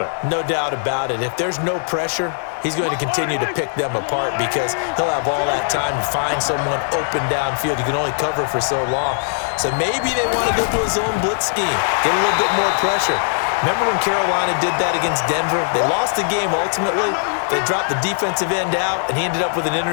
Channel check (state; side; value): silent; right; digital silence